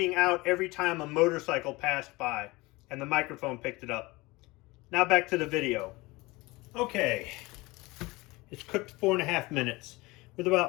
out every time a motorcycle passed by and the microphone picked it up. Now back to the video. Okay, it's cooked 4.5 minutes. With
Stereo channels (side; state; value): right; quieter; 22.3 dB